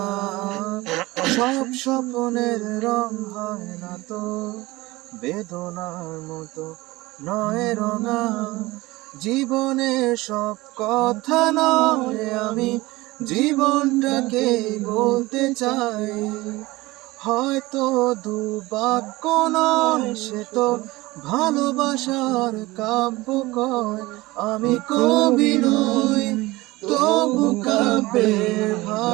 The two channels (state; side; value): quieter; left; 20.3 dB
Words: সব স্বপ্নের রং হয় না তো বেদনার মতো, নয় রঙা। জীবনের সব কথা নয়, আমি জীবনটাকে বলতে চাই। হয়তো দু বাক্য নয়, সে তো ভালোবাসার কাব্য কয়। আমি কবি নই, তবু কাব্যের